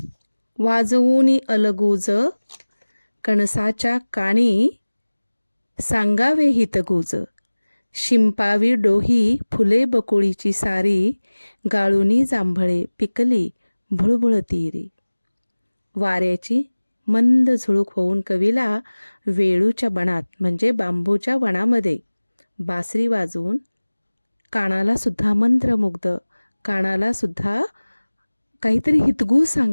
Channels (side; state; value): both; inverted; correlation -1.00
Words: वाजवूनी अलगूज, कणसाच्या काणी सांगावे हितगुज. शिंपावी डोही फुले बकुळीची सारी, गाळुनी जांभळे पिकली भुळभुळ तीरी. वाऱ्याची मंद झुळूक होऊन कवीला वेळूच्या वनात म्हणजे बांबूच्या वनामध्ये बासरी वाजवून कानाला सुद्धा मंत्रमुग्ध, कानाला सुद्धा काहीतरी हितगुज